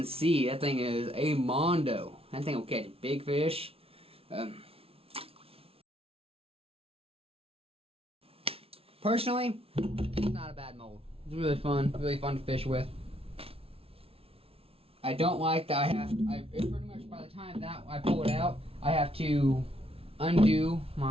see that thing is a mondo. That thing will catch big fish. Personally, it's not a bad mold. It's really fun to fish with. I don't like that it's pretty much by the time that I pull it out, I have to undo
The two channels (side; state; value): left; late; 0.27 ms